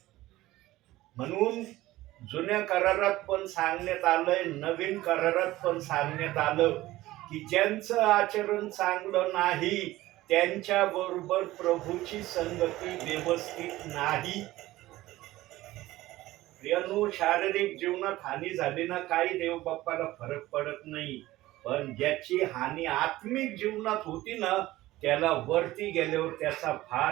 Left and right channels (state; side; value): quieter; left; 17.0 dB